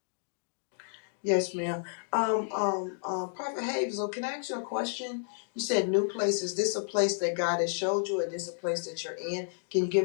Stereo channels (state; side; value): silent; right; digital silence